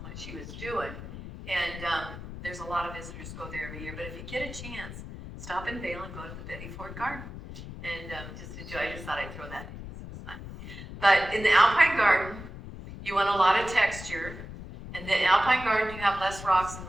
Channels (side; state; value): left; noise; rumble, 11 dB below the sound